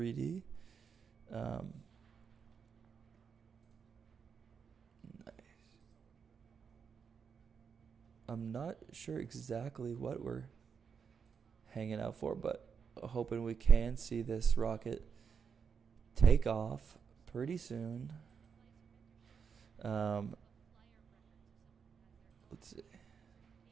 Nice. I'm not sure exactly what we're hanging out for, but hoping we can see this rocket take off pretty soon. Let's see.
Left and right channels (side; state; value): left; quieter; 6.4 dB